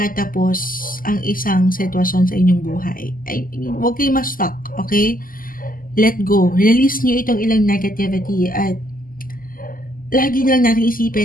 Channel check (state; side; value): late; right; 0.41 ms